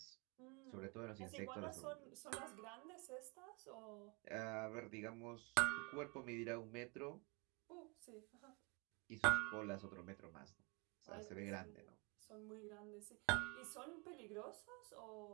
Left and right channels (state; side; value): quieter; left; 30.4 dB